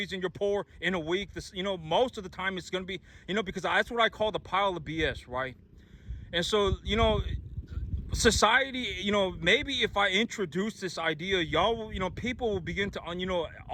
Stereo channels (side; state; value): both; identical; correlation 1.00